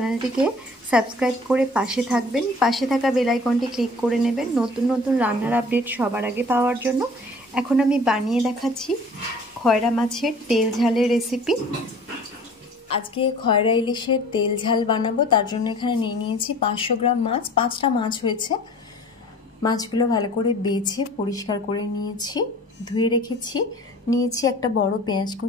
সাবস্ক্রাইব করে পাশে থাকবেন, পাশে থাকা বেল আইকনটি ক্লিক করে নেবেন নতুন নতুন রান্নার আপডেট সবার আগে পাওয়ার জন্য। এখন আমি বানিয়ে দেখাচ্ছি খয়রা মাছের তেল ঝালের রেসিপি। আজকে খয়রা ইলিশের তেল ঝাল বানাবো, তার জন্য এখানে নিয়ে নিয়েছি 500 গ্রাম মাছ। 5টা মাছ হয়েছে। মাছগুলো ভালো করে বেছে পরিষ্কার করে নিয়েছি, ধুয়ে রেখেছি। নিয়েছি একটা বড় পেঁয়াজ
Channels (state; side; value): normal; both; correlation 0.47